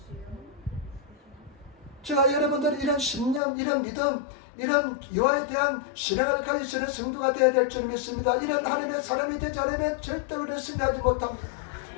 제가 여러분들이 이런 신념, 이런 믿음, 이런 여호와에 대한 신앙을 가지시는 성도가 되어야 될 줄 믿습니다. 이런 하나님의 사람이 되지 않으면 절대 우리는 승리하지 못합니다.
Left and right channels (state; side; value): drops out; right; at 3.4 s